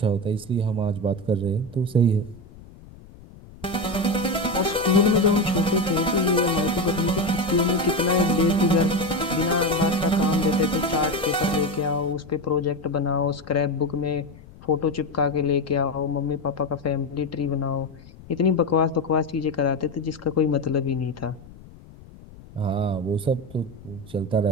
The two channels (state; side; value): noise; left; rumble, 20 dB below the sound